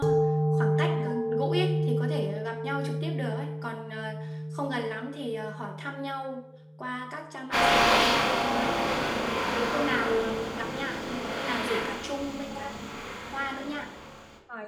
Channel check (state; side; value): identical; both; correlation 1.00